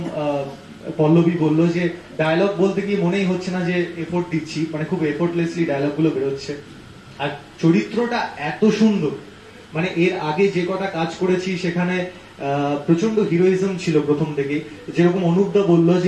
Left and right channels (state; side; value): identical; both; correlation 1.00